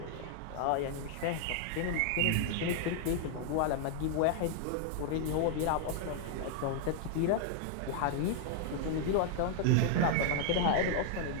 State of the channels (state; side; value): different; both; correlation 0.00